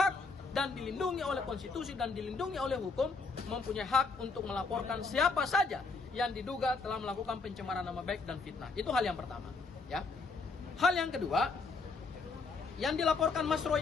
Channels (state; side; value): quieter; right; 4.2 dB